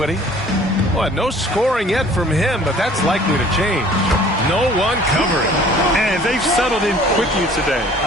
Well, no scoring yet from him, but that's likely to change. No one covering. And they've settled in quickly today.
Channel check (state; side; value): normal; both; correlation 0.52